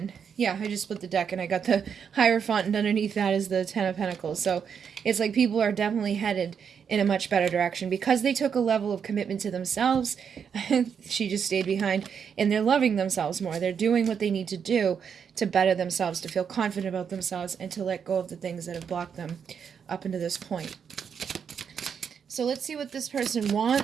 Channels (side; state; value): left; quieter; 7.1 dB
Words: Yeah, I just split the deck and I got the Hierophant, and underneath that is the Ten of Pentacles. So it's like people are definitely headed in a much better direction because they took a level of commitment to themselves. She just stayed behind, and they're loving themselves more. They're doing what they need to do to better themselves, to feel confident about themselves, and to let go of the things that have blocked them up into this point. So let's see what this person